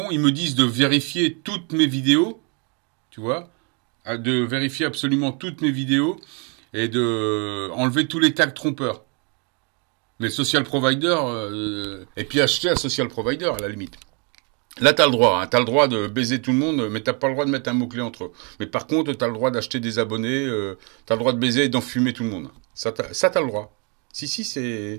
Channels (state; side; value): quieter; left; 35.0 dB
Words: Ils me disent de vérifier toutes mes vidéos, tu vois, de vérifier absolument toutes mes vidéos et de enlever tous les tags trompeurs. Mais social provider, et puis acheter un social provider à la limite. Là, t'as le droit, hein, t'as le droit de baiser tout le monde, mais t'as pas le droit de mettre un mot-clé entre eux. Mais par contre, t'as le droit d'acheter des abonnés, t'as le droit de baiser et d'enfumer tout le monde. Ça, t'as le droit. Si,